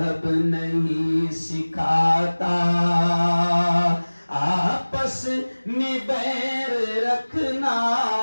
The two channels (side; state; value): both; inverted; correlation -1.00